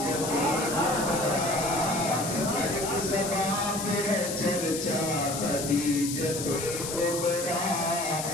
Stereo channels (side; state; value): left; noise; hiss, 5 dB below the sound